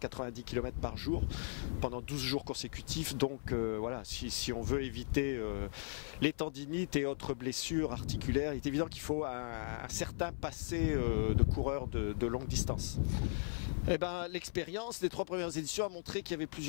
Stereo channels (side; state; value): right; silent; 53 dB below the other